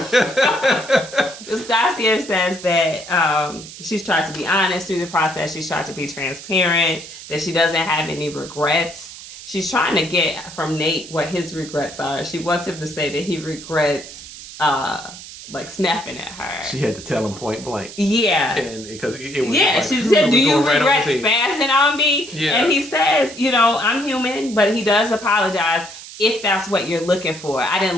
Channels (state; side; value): noise; right; hiss, 14 dB below the sound